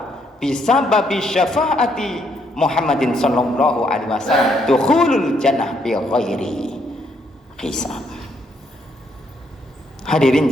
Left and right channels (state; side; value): normal; both; correlation 0.73